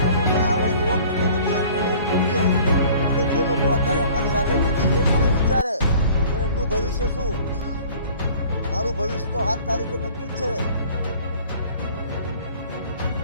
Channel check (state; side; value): inverted; both; correlation -0.50